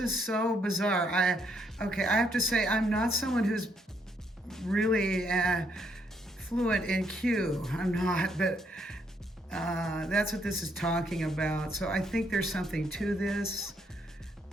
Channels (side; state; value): both; normal; correlation 0.73